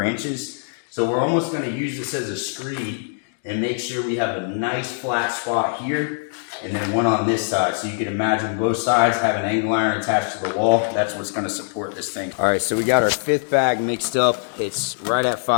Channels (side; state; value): right; silent; digital silence